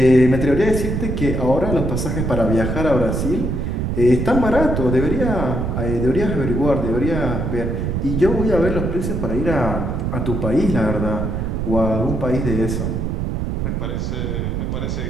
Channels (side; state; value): right; noise; rumble, 1 dB below the sound